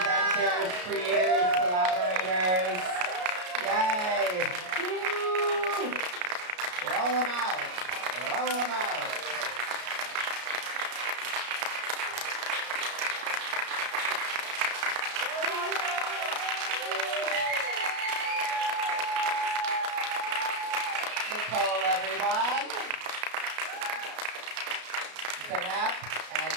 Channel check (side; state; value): left; late; 33 ms